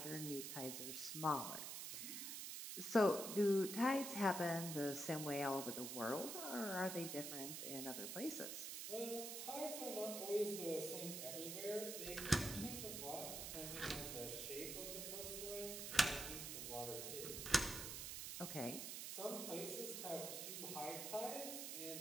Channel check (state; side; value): noise; right; hiss, 5 dB below the sound